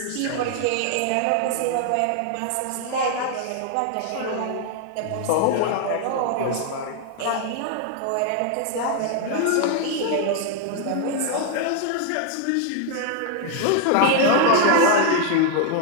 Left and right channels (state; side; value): different; both; correlation 0.00